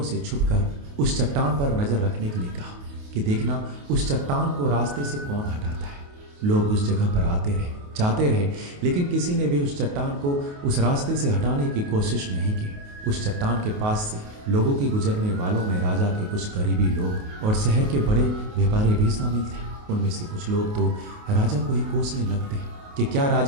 से छुपकर उस चट्टान पर नज़र रखने के लिए कहा कि देखना उस चट्टान को रास्ते से कौन हटाता है। लोग उस जगह पर आते रहे, जाते रहे, लेकिन किसी ने भी उस चट्टान को उस रास्ते से हटाने की कोशिश नहीं की। उस चट्टान के पास से लोगों के गुजरने वालों में राजा के कुछ करीबी लोग और शहर के बड़े व्यापारी भी शामिल थे। उनमें से कुछ लोग तो राजा को ही कोसने लगते कि क्या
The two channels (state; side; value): late; left; 28 ms